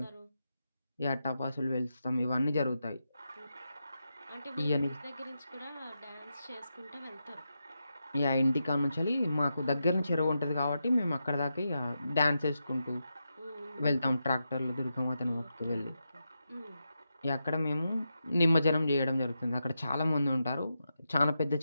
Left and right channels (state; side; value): inverted; both; correlation -0.87